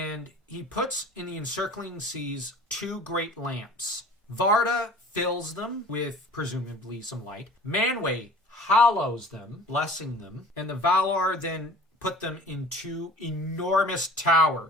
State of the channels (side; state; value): both; normal; correlation 0.46